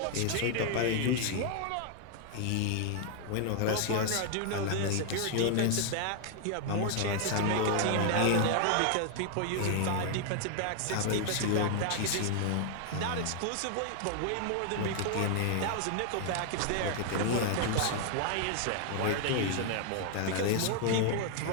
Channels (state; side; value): different; both; correlation 0.00